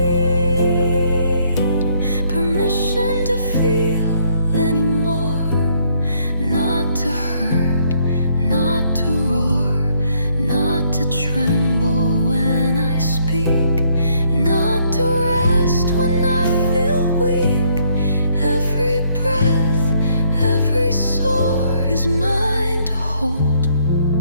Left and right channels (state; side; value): inverted; both; correlation -0.68